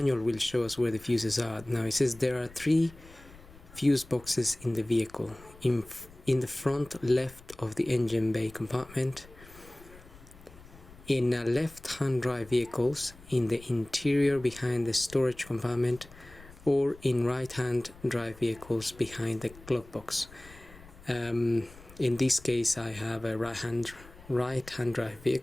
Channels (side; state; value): left; noise; rumble, 21 dB below the sound